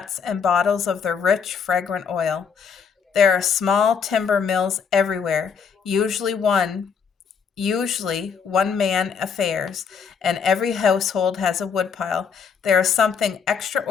and bottles of the rich, fragrant oil. There are small timber mills everywhere, usually one man affairs, and every household has a woodpile. There is something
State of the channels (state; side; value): quieter; right; 6.4 dB